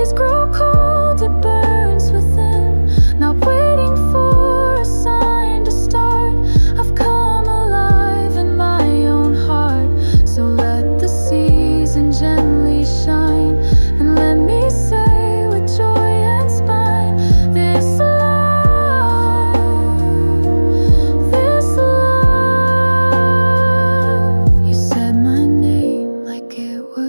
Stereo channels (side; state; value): both; inverted; correlation -1.00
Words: grow cold, it burns within. Not waiting for a sign to start. I've come alive in my own heart. So let the season gently shine, and let me say with joy and spine, this love, this love. You said my name like it